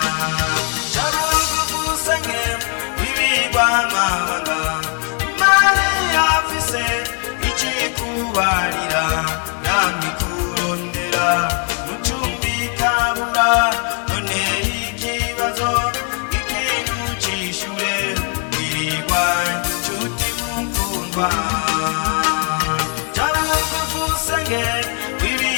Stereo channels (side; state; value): right; quieter; 38.1 dB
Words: Jabugusange wibirwa amabanga, Imana irafise icikubarira, namikurondera mucumbikabura, none ikibazo ikintu cishure, wirwa nshuti mukundwa. Jabugusange